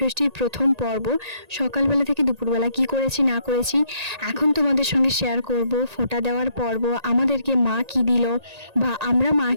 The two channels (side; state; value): left; late; 1.8 ms